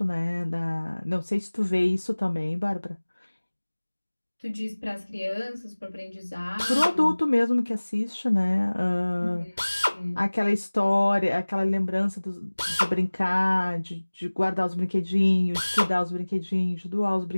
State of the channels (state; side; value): inverted; both; correlation -1.00